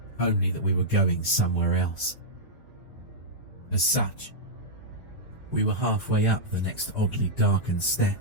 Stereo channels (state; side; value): late; right; 4.9 ms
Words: only that we were going somewhere else. As such, we were halfway up the next oddly darkened